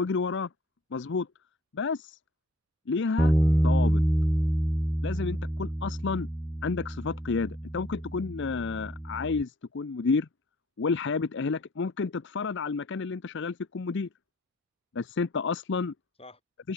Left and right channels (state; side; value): normal; both; correlation 0.60